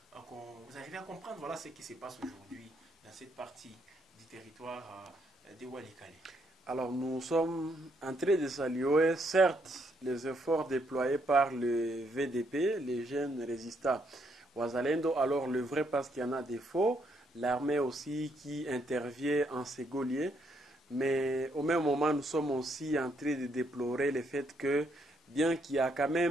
arrivez à comprendre voilà, ce qui se passe aujourd'hui dans cette partie du territoire de Walikale? Alors nous sommes en train de saluer certes les efforts déployés par le VDP, les jeunes résistants Ouazalendo, alors le vrai parce qu'il y en a des faux, l'armée aussi qui intervient en ségolier, mais au même moment nous sommes aussi en train de déplorer le fait que bien qu'il y a quand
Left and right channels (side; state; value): both; normal; correlation 0.74